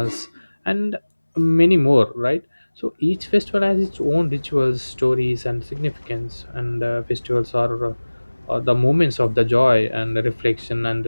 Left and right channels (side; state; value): both; inverted; correlation -1.00